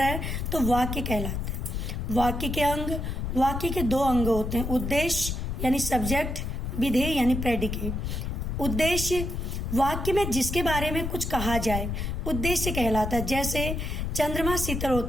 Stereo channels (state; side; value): noise; left; rumble, 3 dB below the sound